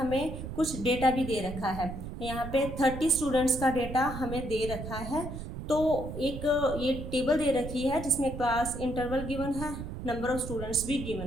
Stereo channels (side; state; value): right; noise; rumble, 8 dB below the sound